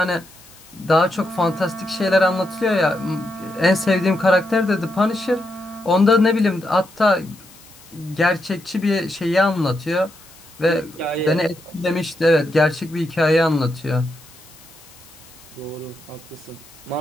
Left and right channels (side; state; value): left; noise; hiss, 23 dB below the sound